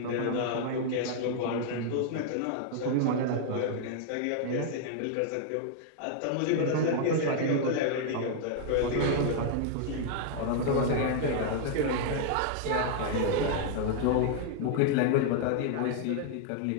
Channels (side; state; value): both; different; correlation 0.00